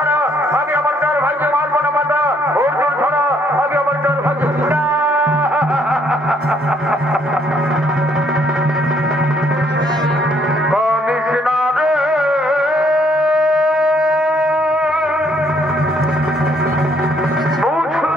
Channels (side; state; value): both; normal; correlation 0.67